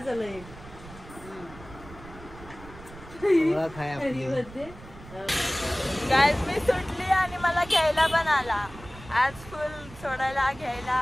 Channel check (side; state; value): right; noise; rumble, 17 dB below the sound